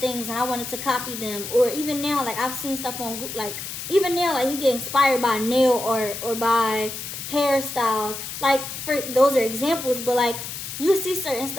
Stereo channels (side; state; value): left; noise; hiss, 8 dB below the sound